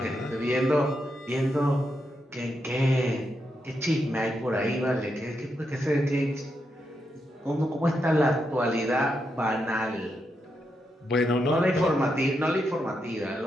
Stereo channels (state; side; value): normal; both; correlation 0.83